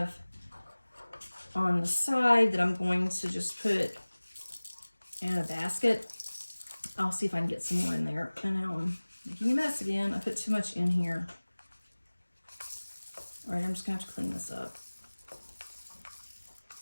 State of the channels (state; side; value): inverted; both; correlation -1.00